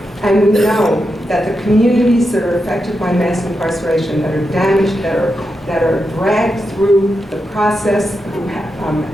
And we know that the communities that are affected by mass incarceration, that are damaged, that are dragged through the process,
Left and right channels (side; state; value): both; normal; correlation 0.87